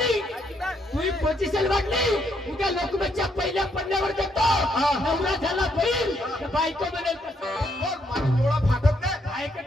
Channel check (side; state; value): both; normal; correlation 0.74